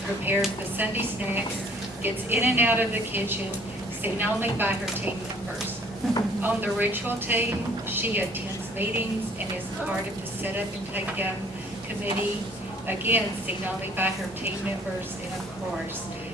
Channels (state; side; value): normal; both; correlation 0.56